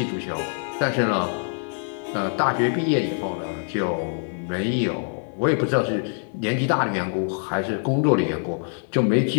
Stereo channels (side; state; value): right; silent; 62 dB below the other